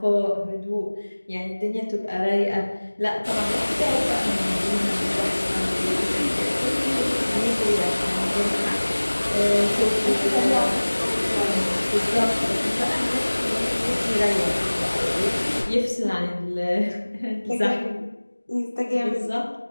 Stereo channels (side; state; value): both; inverted; correlation -1.00